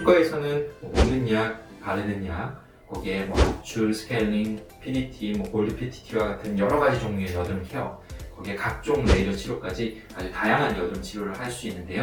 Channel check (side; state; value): both; identical; correlation 1.00